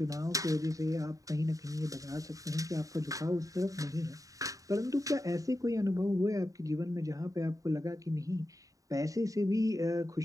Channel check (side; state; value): left; late; 0.16 ms